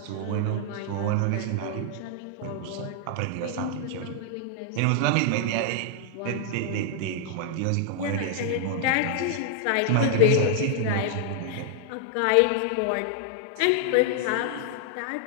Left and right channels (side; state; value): both; different; correlation 0.00